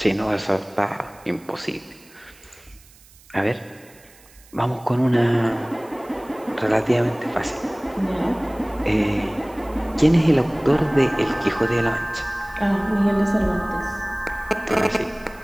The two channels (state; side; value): noise; right; hiss, 26 dB below the sound